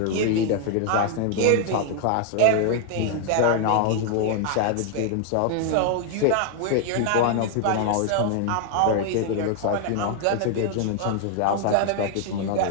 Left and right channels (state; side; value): different; both; correlation 0.00